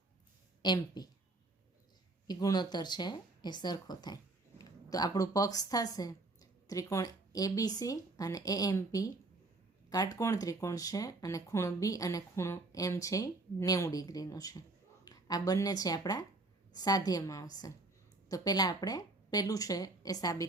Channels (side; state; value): left; quieter; 3.1 dB